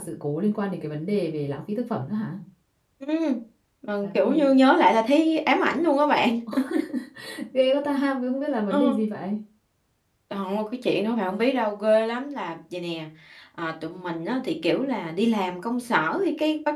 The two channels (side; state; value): both; identical; correlation 1.00